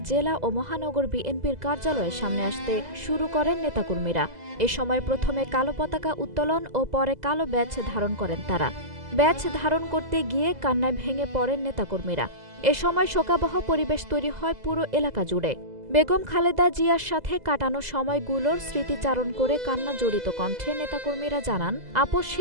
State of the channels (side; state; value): left; late; 2.0 ms